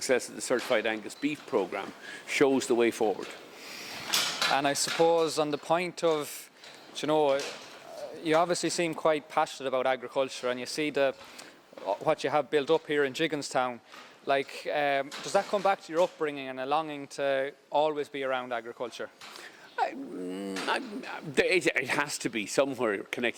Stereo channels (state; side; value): identical; both; correlation 1.00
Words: of the Certified Angus beef programme shows the way forward. And I suppose on the point of, you obviously seem quite passionate about agriculture, and you see what you have built up here in Gigginstown. Like, does that come back to your upbringing and a longing to always be around agriculture? It has to be somewhere